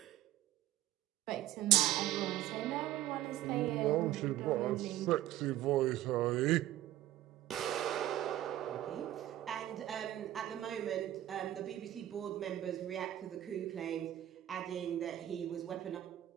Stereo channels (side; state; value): left; quieter; 13.6 dB